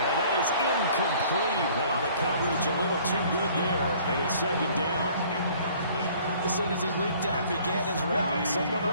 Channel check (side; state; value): both; inverted; correlation -0.54